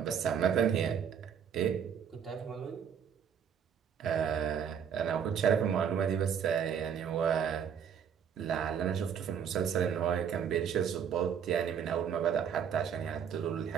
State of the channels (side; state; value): left; quieter; 7.9 dB